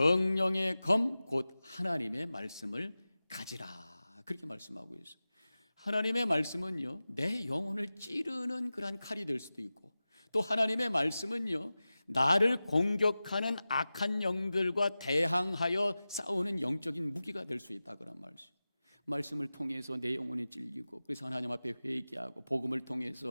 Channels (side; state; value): both; inverted; correlation -0.96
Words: 검 곧 하나님의 말씀을 가지라. 그렇게 말씀하고 있어요. 하나님의 말씀은요, 내 영혼을 찌르는 그러한 칼이 될 수도 있고, 또 하나님의 말씀은요, 나를 공격하는 악한 영들과 대항하여 싸우는 영적인 무기가 될 수 있다, 그런 말씀. 말씀을 통해서 내 영혼이 찔리고, 그래서 하나님 앞에 회개하고, 복음을